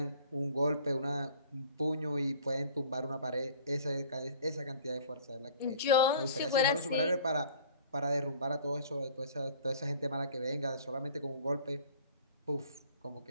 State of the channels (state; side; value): inverted; both; correlation -0.50